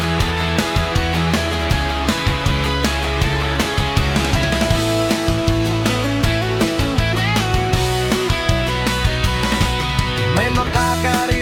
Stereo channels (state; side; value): identical; both; correlation 1.00